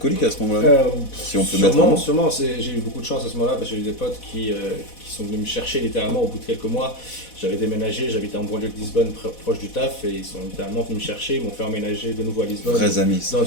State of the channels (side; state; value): right; late; 4.1 ms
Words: à ce moment-là. Si on peut mettre un mot. Sûrement, j'ai eu beaucoup de chance à ce moment-là parce que j'ai eu des potes qui sont venus me chercher littéralement au bout de quelques mois. J'avais déménagé, j'habitais en banlieue de Lisbonne, proche du taf, et ils sont littéralement venus me chercher, ils m'ont fait emménager de nouveau à Lisbonne, Vrais amis. Ça. dans